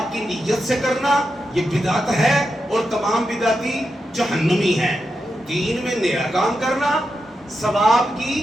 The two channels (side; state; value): both; normal; correlation 0.87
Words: کی نیت سے کرنا یہ بدعت ہے اور تمام بدعتی جہنمی ہیں. 3 میں نیا کام کرنا ثواب کی